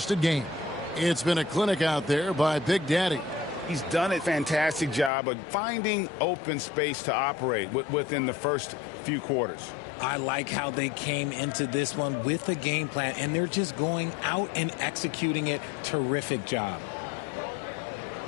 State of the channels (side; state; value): right; drops out; at 5.1 s